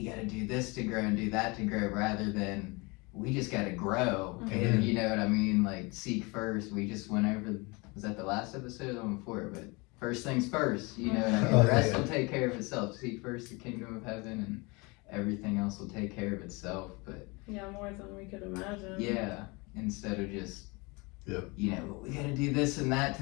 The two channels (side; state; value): right; quieter; 27.0 dB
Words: got to do this to grow and do that to grow, rather than we just got to grow. Mhm. And you know what I mean? Like seek first. We just went over, was that the last episode or the one before? But first things first, you know what I mean? Oh, The rest yeah. will take care of itself. Seek first the kingdom of heaven, and everything else will take care of itself. But Yeah, more than we could imagine. yeah, instead of just, Yep. we got to do this and that